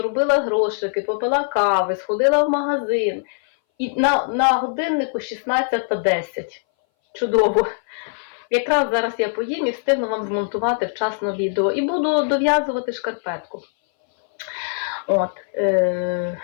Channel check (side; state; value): right; silent; 61 dB below the other